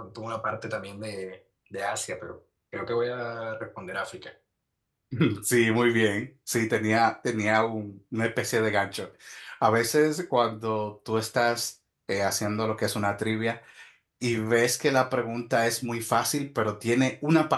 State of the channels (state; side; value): identical; both; correlation 1.00